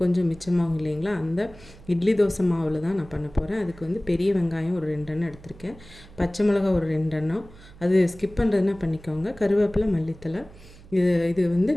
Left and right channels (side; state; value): right; noise; hum, 21 dB below the sound